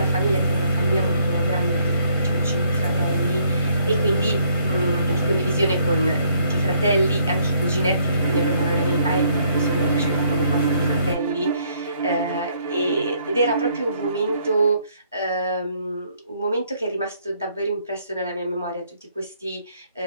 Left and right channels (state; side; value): inverted; both; correlation -0.67